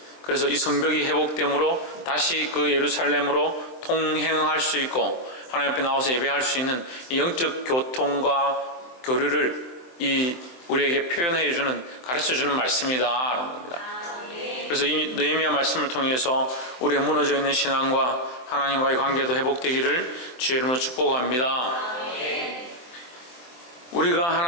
그래서 이 성벽이 회복됨으로 다시 그 예루살렘으로 통행할 수 있고 하나님 앞에 나와서 예배할 수 있는 이 영적 교통과 교류를 우리에게 표현해 주는, 가르쳐 주는 말씀이다 라는 겁니다. 그래서 이 느헤미야 말씀을 통해서 우리의 무너져 있는 신앙과 하나님과의 관계도 회복되기를 주의 이름으로 축복합니다. 우리가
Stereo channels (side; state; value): right; late; 23 ms